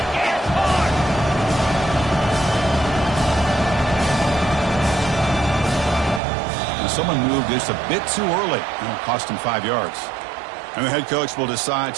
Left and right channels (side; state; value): left; drops out; at 6.2 s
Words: Someone moved this a bit too early, and it cost him 5 yards. And the head coach will decide